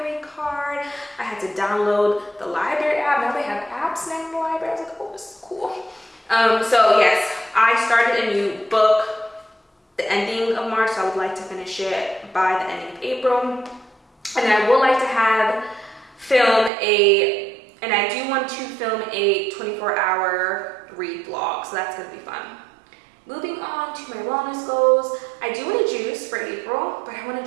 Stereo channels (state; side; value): drops out; left; at 16.7 s